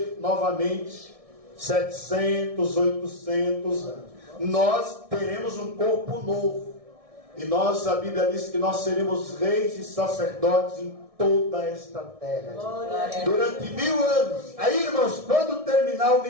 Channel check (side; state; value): left; late; 1.6 ms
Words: novamente 700, 800 anos. Nós teremos um corpo novo, e a Bíblia diz que nós seremos reis e sacerdotes em toda esta terra durante 1000 anos. Aí, irmãos, quando terminar o